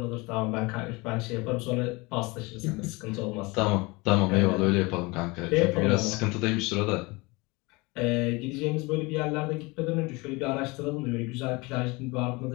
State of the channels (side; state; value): right; quieter; 25.1 dB